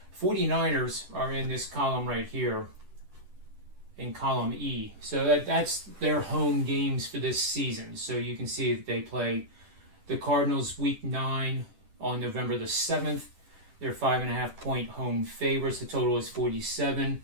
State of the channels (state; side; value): late; left; 10 ms